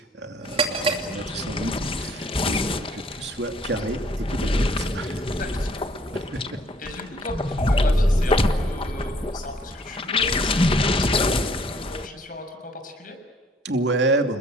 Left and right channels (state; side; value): normal; both; correlation 0.61